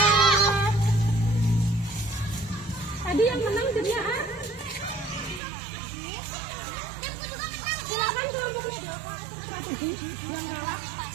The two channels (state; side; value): drops out; left; at 5.4 s